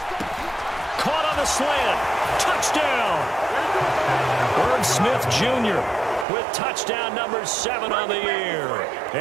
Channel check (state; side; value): drops out; left; at 6.2 s